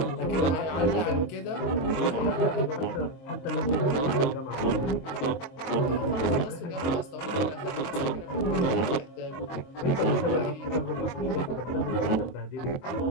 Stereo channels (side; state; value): right; late; 22 ms